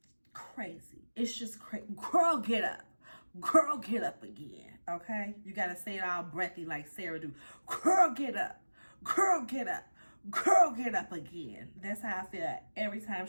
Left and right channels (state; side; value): inverted; both; correlation -1.00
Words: Crazy. It's just crazy. Girl, get up. Girl, get up again. Okay? You got to say it all breathy like Sarah do. Girl, get up. Girl, get up. Girl, get up again. That's how I feel every time